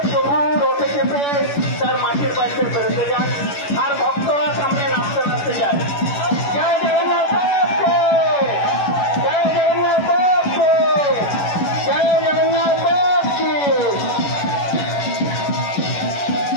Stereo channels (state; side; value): late; right; 11 ms